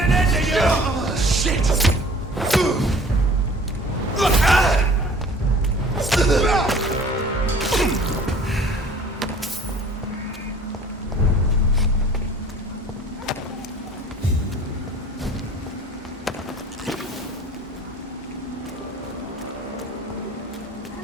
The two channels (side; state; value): both; normal; correlation 0.48